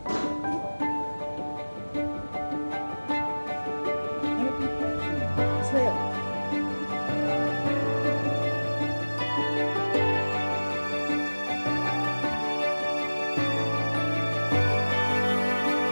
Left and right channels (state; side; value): inverted; both; correlation -1.00